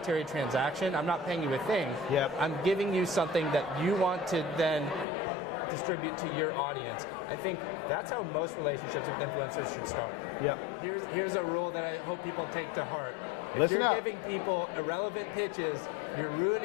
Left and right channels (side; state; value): right; drops out; at 5.1 s